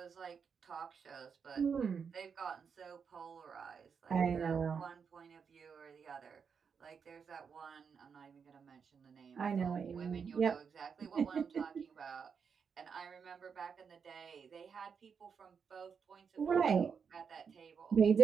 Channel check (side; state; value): left; quieter; 6.3 dB